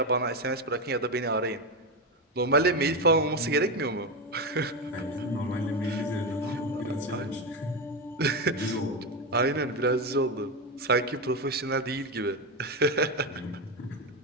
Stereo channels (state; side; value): normal; both; correlation 0.12